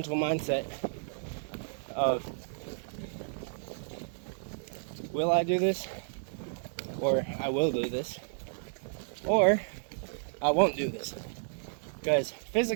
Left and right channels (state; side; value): silent; left; 56 dB below the other